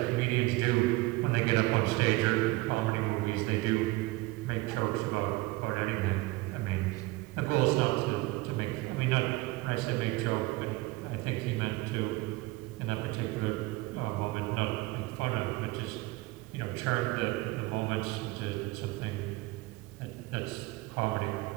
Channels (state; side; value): quieter; left; 20.8 dB